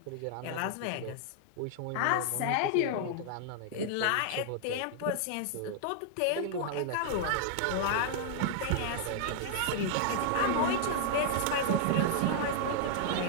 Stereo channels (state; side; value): different; both; correlation -0.01